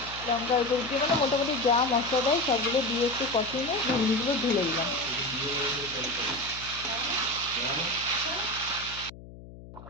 লঙ্কা এগুলো দিয়ে মানে মোটামুটি যা মশলা দেয় সবগুলো দিয়ে একটু কষিয়ে নিয়ে ঘুগনিগুলো ঢেলে দিলাম।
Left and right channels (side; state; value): left; noise; hum, 17 dB below the sound